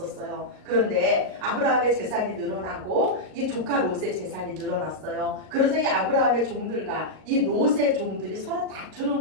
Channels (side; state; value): left; late; 38 ms